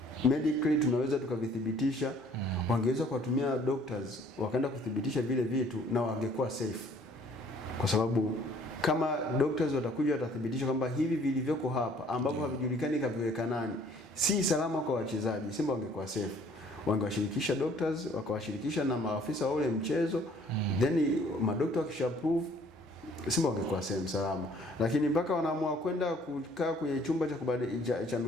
medically tunaweza tukavithibitisha, wangeweza kuwatumia doctors wakaenda kuthibitisha vile vitu na wangekuwa safe. Kwa sababu kama doctors watakuja watathibitisha kwamba hivi vilivyoko hapa ambavyo havijulikani kaviweka nani si salama kwa wachezaji, Simba wangekuwa safe. Wangewashirikisha doctors, wakawashirikisha na maafisa wa ule mchezo, then madokta wakishaprove, Simba wangekuwa sehemu salama. Lakini mpaka wanaamua kwenda kukaa kwenye chumba cha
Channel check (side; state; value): both; normal; correlation 0.58